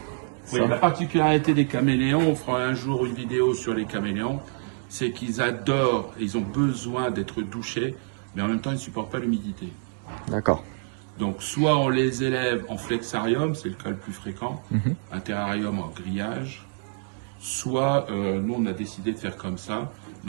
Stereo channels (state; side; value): silent; left; digital silence